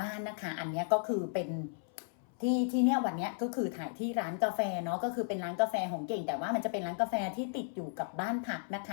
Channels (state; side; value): silent; right; 55 dB below the other